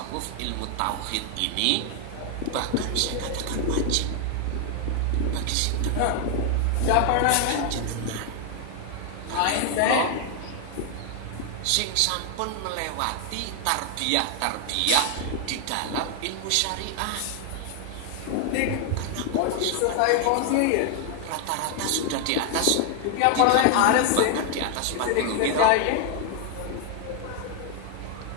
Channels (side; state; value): both; different; correlation 0.00